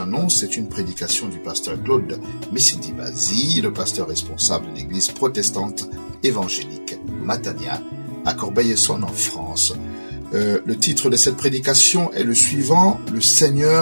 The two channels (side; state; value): both; inverted; correlation -1.00